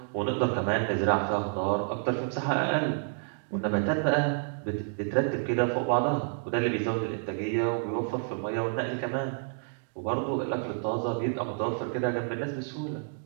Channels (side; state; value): left; silent; digital silence